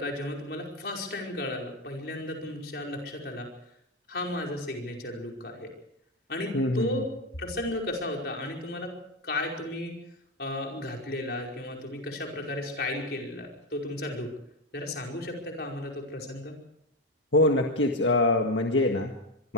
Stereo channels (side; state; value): both; normal; correlation 0.11